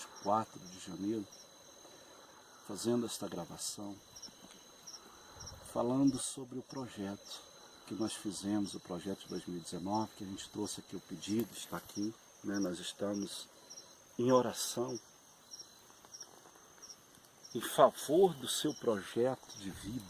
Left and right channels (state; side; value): identical; both; correlation 1.00